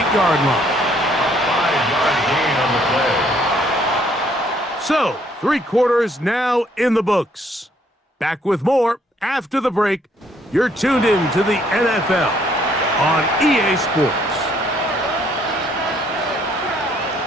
line. 5-yard gain on the play. So, 3 quarters now in the books. Back with more after the break. You're tuned in to the NFL on EA Sports.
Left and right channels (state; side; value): normal; both; correlation 0.66